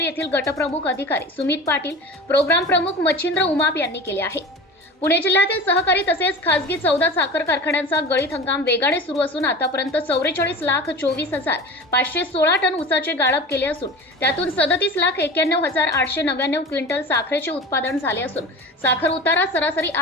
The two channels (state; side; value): normal; both; correlation 0.33